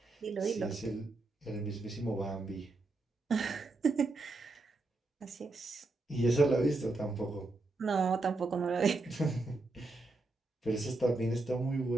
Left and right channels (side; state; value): left; quieter; 3.2 dB